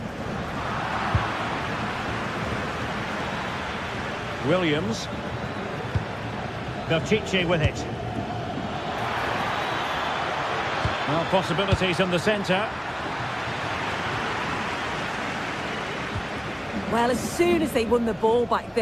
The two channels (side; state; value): both; identical; correlation 1.00